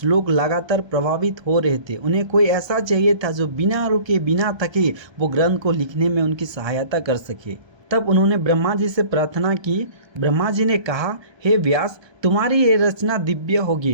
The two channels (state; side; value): late; left; 1.3 ms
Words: लगातार प्रभावित हो रहे थे। उन्हें कोई ऐसा चाहिए था जो बिना रुके बिना थके वो ग्रंथ को लिखने में उनकी सहायता कर सके। तब उन्होंने ब्रह्मा जी से प्रार्थना की। ब्रह्मा जी ने कहा, हे व्यास, तुम्हारी ये रचना दिव्य